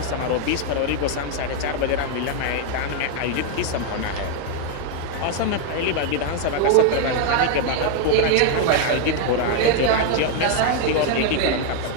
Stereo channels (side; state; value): both; different; correlation 0.00